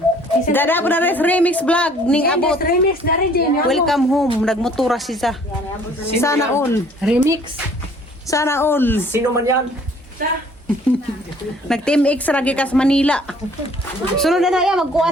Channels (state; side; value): normal; both; correlation 0.57